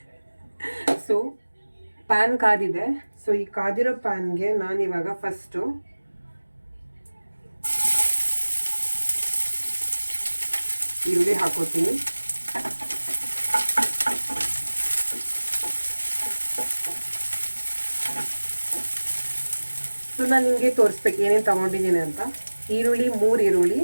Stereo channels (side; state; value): both; inverted; correlation -1.00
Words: ಸೊ ಪ್ಯಾನ್ ಕಾದಿದೆ. ಸೊ ಈ ಕಾದಿರೋ ಪ್ಯಾನ್ಗೆ ನಾನಿವಾಗ ಫಸ್ಟು ಈರುಳ್ಳಿ ಹಾಕೋತೀನಿ. ಸೊ ನಾನು ನಿಮಗೆ ತೋರಿಸ್ಬೇಕು ಏನೇನು ತೊಗೊಂಡಿದ್ದೀನಿ ಅಂತ. ಈರುಳ್ಳಿ 3 ಈರುಳ್ಳಿ.